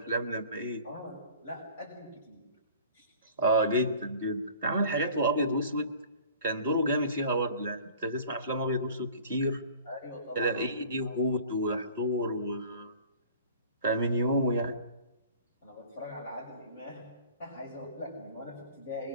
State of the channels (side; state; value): both; inverted; correlation -0.46